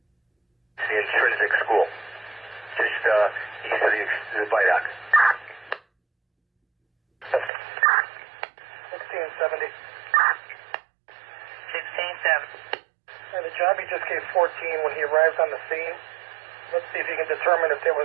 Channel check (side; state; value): left; drops out; at 7.5 s